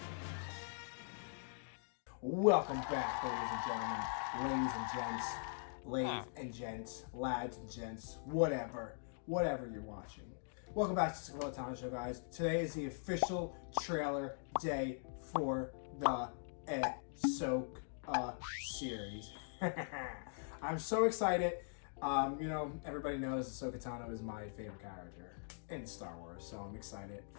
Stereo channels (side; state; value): right; silent; digital silence